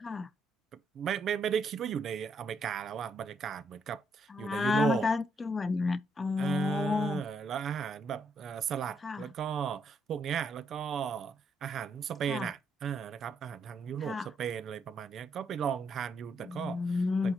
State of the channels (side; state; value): both; normal; correlation 0.75